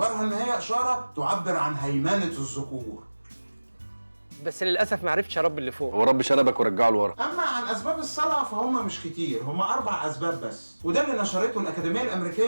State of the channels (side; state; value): both; inverted; correlation -1.00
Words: ان هي اشارة تعبر عن هيمنة الذكور. بس للاسف ما عرفتش اربي اللي فوق. هو رب شنبك ورجعه لورا. اما عن اسباب الصلع فهم مش كتير، هم 4 اسباب بس. وده اللي نشرته الأكاديمية